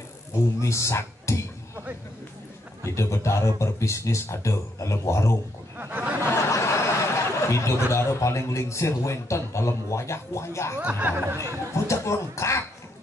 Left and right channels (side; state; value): both; normal; correlation 0.75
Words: bumi sakti hidup betara berbisnis ada dalam warung hidup betara paling lingsir wenten dalam wayah-wayah puncak lengkap